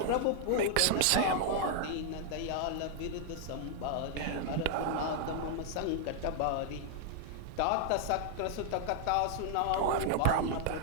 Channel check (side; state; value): both; different; correlation 0.00